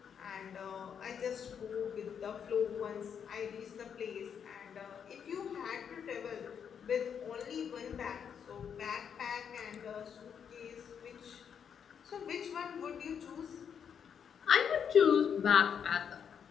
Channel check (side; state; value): right; quieter; 7.6 dB